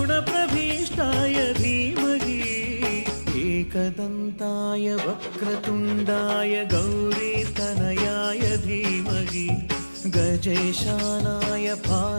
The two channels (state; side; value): inverted; both; correlation -1.00